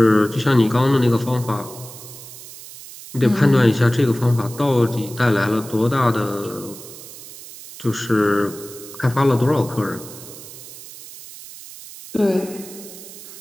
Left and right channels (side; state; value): right; noise; hiss, 15 dB below the sound